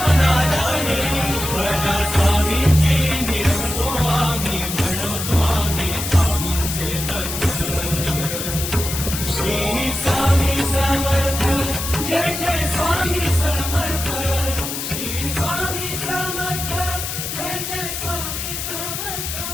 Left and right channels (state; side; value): noise; left; hiss, 5 dB below the sound